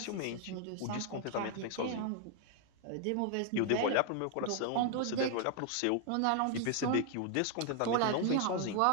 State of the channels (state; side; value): different; both; correlation 0.00